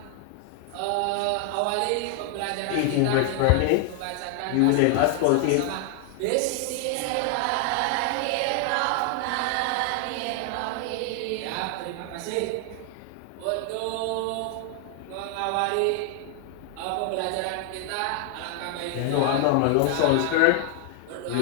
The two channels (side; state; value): both; different; correlation 0.00